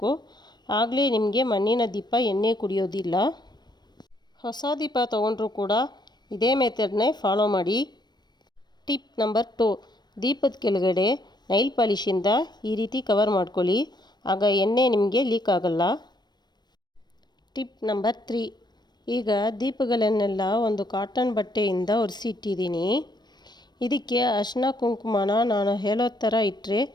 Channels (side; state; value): right; late; 0.21 ms